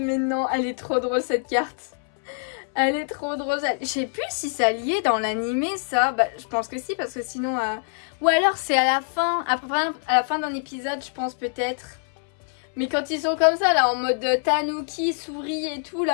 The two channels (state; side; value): silent; right; 62 dB below the other